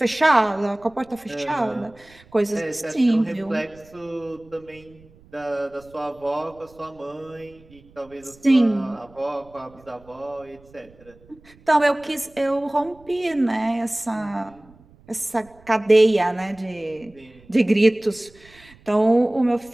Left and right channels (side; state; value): right; noise; rumble, 26 dB below the sound